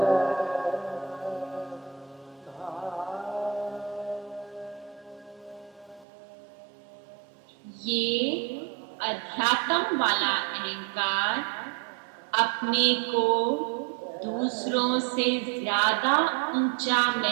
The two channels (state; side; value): drops out; left; at 6.1 s